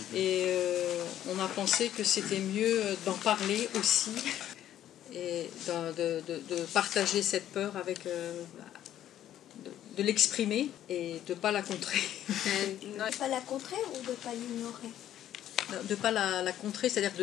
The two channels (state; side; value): quieter; right; 11.7 dB